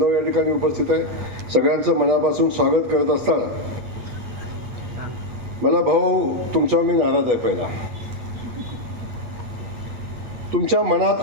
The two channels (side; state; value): left; late; 8.3 ms